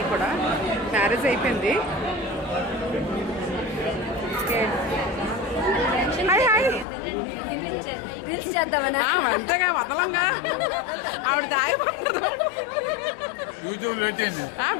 కూడా మ్యారేజ్ అయిపోయింది. Hi hi. అంతేగా వదలంగా ఆవిడ దాయిపోతుంది.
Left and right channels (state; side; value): drops out; right; at 6.9 s